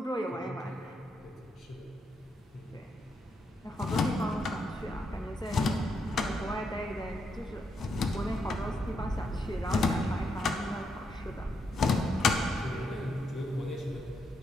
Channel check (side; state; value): both; normal; correlation 0.79